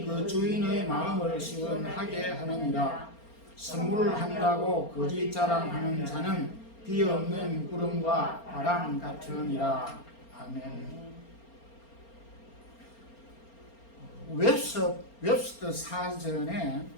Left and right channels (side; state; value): right; late; 4.3 ms